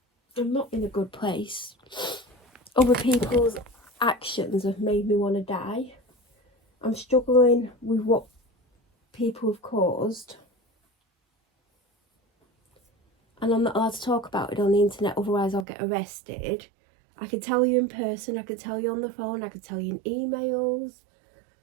I'm not in a good place. Other people's actions have made me want to die. I'm struggling with what people have caused, and I'm not allowed to talk about it on the internet, otherwise I'll get arrested. I could tell you in person, I could tell you on the phone, I could tell you in emails.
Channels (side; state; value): left; drops out; at 15.7 s